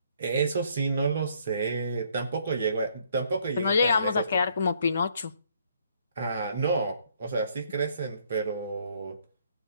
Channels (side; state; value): both; inverted; correlation -0.66